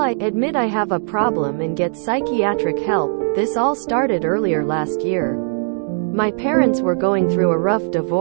admit I have a problem and get psychiatric help. This all started earlier last year. My parents were going through a rough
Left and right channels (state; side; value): silent; left; digital silence